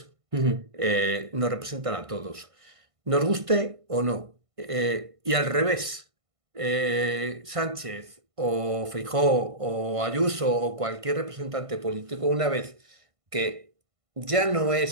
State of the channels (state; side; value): late; left; 1.5 ms